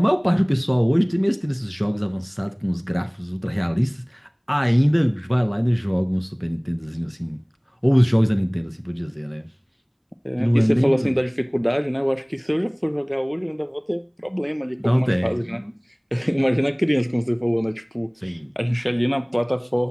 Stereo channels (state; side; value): identical; both; correlation 1.00